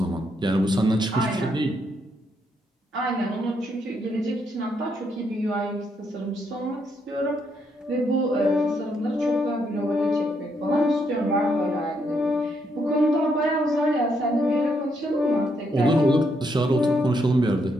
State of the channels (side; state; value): both; normal; correlation 0.76